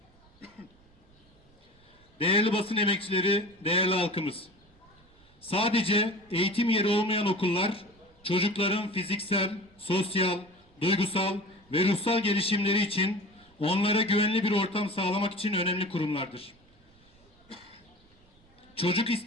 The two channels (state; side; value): noise; right; rumble, 29 dB below the sound